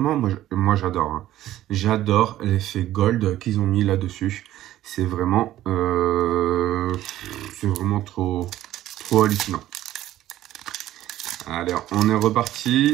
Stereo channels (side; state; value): left; quieter; 13.8 dB